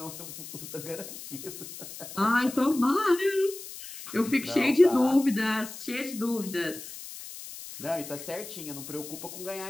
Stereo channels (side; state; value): left; noise; hiss, 12 dB below the sound